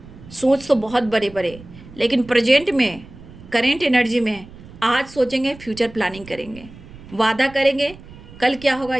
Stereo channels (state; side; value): noise; right; rumble, 19 dB below the sound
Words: सोच तो बहुत बड़े बड़े, लेकिन प्रेजेंट में, करेंट एनर्जी में आज सोचेंगे, फ्यूचर प्लानिंग करेंगे, वादा करेंगे। कल क्या होगा